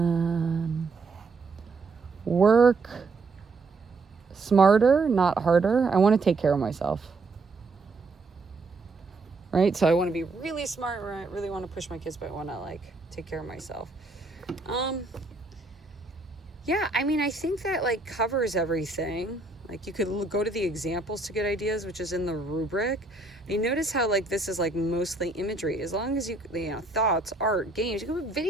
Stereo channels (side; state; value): left; quieter; 3.7 dB